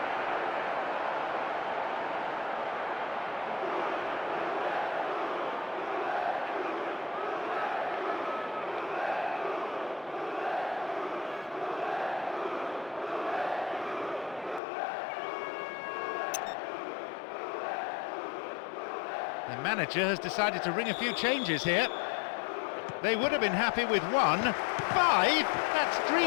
The manager has decided to ring a few changes here. They would have been happy with 1. 5? That's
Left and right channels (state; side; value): drops out; right; at 14.6 s